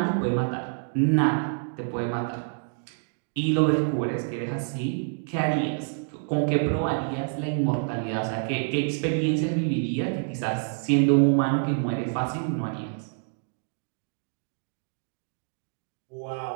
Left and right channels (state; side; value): silent; left; digital silence